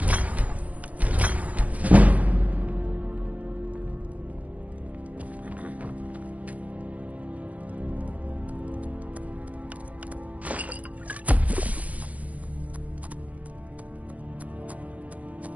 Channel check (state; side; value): late; left; 0.070 ms